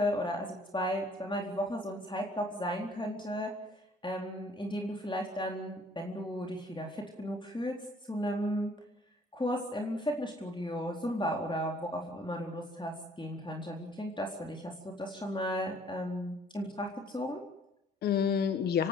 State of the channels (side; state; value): both; normal; correlation 0.58